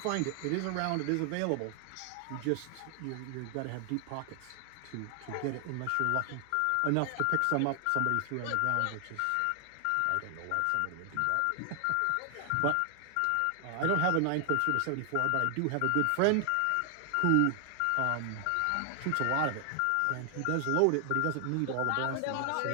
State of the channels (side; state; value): both; different; correlation 0.00